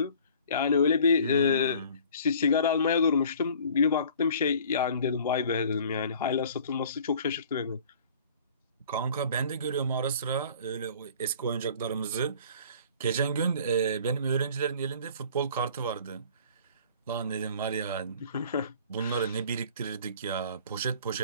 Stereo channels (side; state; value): both; inverted; correlation -0.49